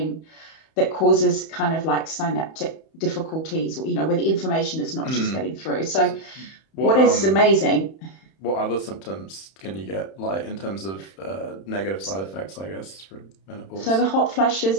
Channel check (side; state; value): right; late; 31 ms